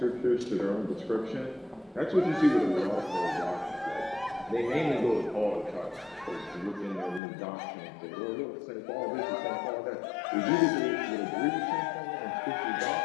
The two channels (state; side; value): drops out; right; at 7.2 s